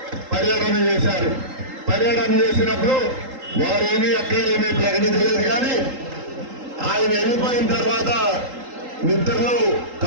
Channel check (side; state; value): left; late; 3.8 ms